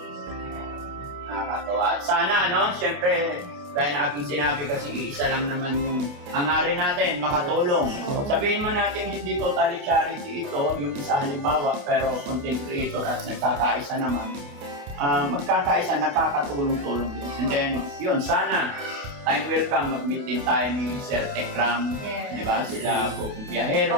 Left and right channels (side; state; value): left; late; 28 ms